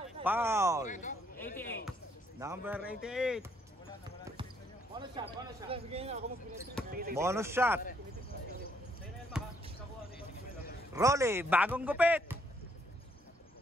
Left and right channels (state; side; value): normal; both; correlation 0.70